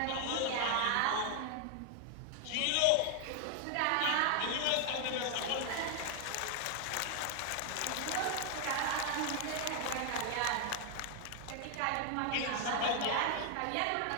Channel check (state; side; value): different; both; correlation 0.00